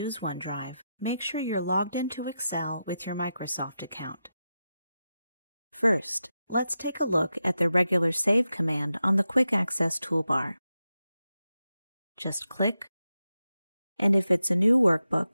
OneDrive, make sure you're logged into Excel with your Microsoft account. First, let's take a look at the regular Save command on the Quick Access toolbar. Just click, and if it's a new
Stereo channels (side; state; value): both; inverted; correlation -0.89